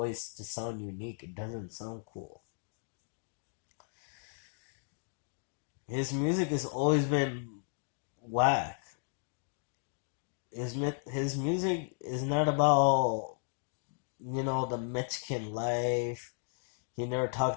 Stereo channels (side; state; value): right; silent; digital silence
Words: to sound unique. It doesn't sound cool. His music has always been whack. His music is not about, the Mexican life. He never